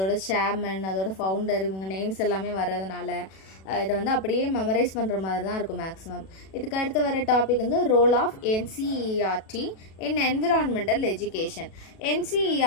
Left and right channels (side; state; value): right; late; 37 ms